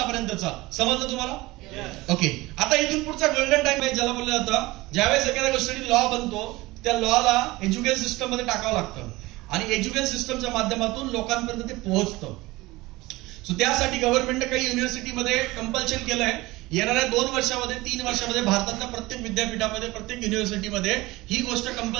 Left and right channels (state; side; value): quieter; left; 20.3 dB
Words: समजलं तुम्हाला? ओके. आता इथून पुढचा गोल्डन टाइम आहे ज्याला बोललं जातं, ज्यावेळेस एखाद्या गोष्टीसाठी लॉ बनतो त्या लॉला एज्युकेशन सिस्टम मध्ये टाकावं लागतं आणि एज्युकेशन सिस्टमच्या माध्यमातून लोकांपर्यंत ते पोहोचतं. सो त्यासाठी गव्हर्नमेंटने काही युनिव्हर्सिटीमध्ये कंपल्शन केलंय, येणाऱ्या 2 वर्षामध्ये 3 वर्षामध्ये भारतातल्या प्रत्येक विद्यापीठामध्ये प्रत्येक युनिव्हर्सिटीमध्ये ही गोष्ट